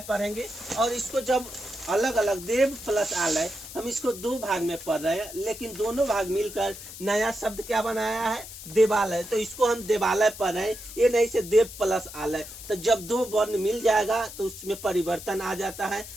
पढ़ेंगे। और इसको जब अलग अलग देव प्लस आलय, हम इसको दो भाग में पढ़ रहे हैं लेकिन दोनों भाग मिलकर नया शब्द क्या बनाया है, देवालय। तो इसको हम देवालय पढ़ रहे हैं, ये नहीं से देव प्लस आलय। तो जब दो वर्ण मिल जाएगा तो उसमें परिवर्तन आ जाता है।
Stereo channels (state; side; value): noise; left; hiss, 13 dB below the sound